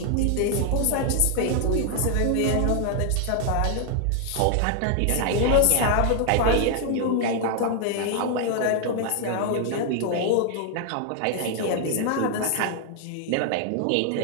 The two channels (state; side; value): different; both; correlation 0.00